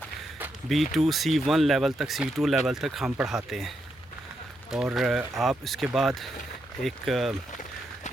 B2 C1 لیول تک، C2 لیول تک ہم پڑھاتے ہیں، اور آپ اس کے بعد ایک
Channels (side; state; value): both; normal; correlation 0.81